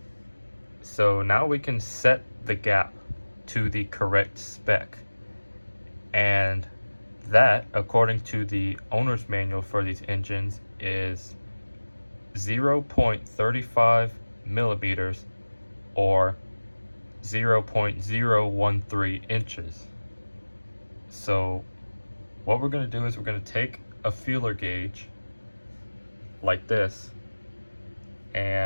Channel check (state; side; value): inverted; both; correlation -1.00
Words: So now we can set the gap to the correct spec. And that, according to the owner's manual for these engines, is 0.35 millimeters or 0.013 inches. So what we're going to do is we're going to take a feeler gauge like this,